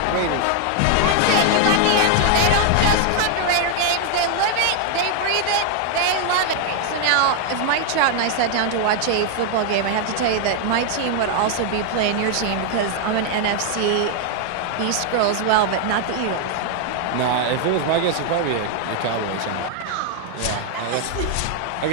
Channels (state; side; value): different; both; correlation 0.00